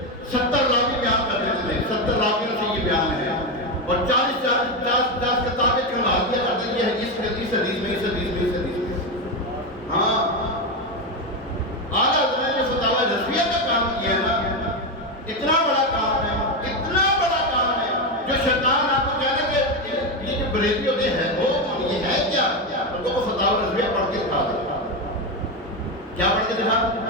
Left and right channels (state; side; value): normal; both; correlation 0.11